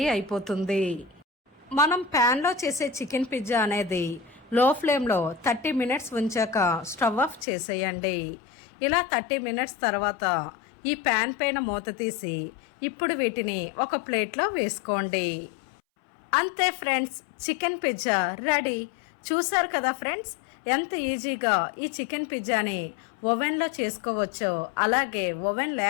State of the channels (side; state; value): right; drops out; at 7.5 s